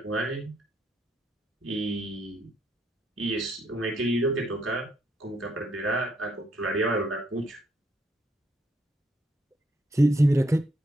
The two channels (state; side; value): normal; both; correlation 0.75